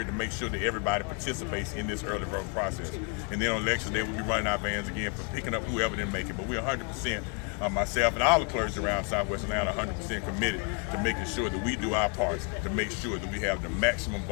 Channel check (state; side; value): quieter; right; 36.3 dB